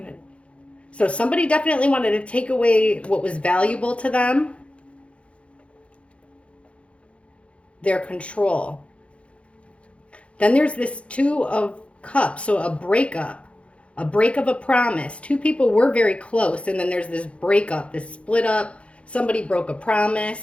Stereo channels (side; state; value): right; late; 0.061 ms